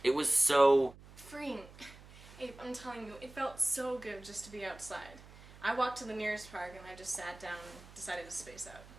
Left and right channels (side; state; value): right; noise; hum, 20 dB below the sound